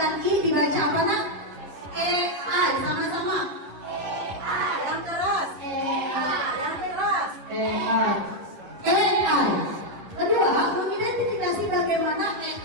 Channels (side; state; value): left; late; 10 ms